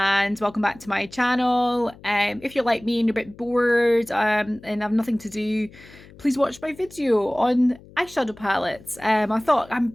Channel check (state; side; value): noise; left; hum, 22 dB below the sound